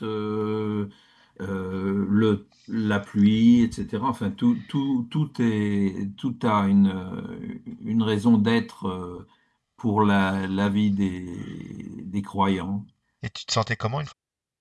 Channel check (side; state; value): both; identical; correlation 1.00